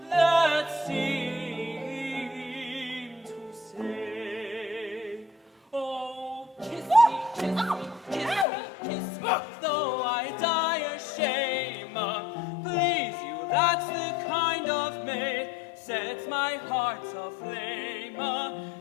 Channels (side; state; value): right; drops out; at 8.5 s